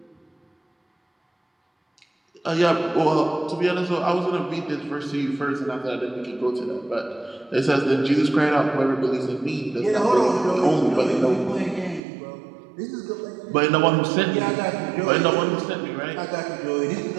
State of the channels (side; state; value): left; drops out; at 12.0 s